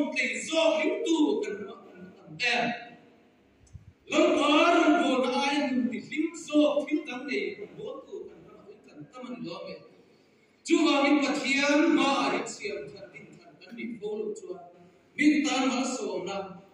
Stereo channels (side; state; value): both; identical; correlation 1.00